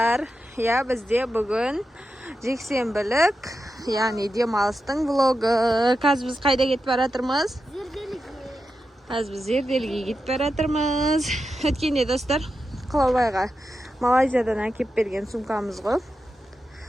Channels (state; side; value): normal; both; correlation 0.89